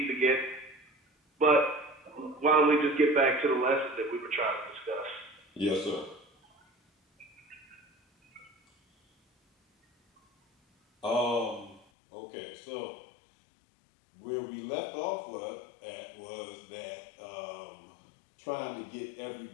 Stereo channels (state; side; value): drops out; right; at 11.8 s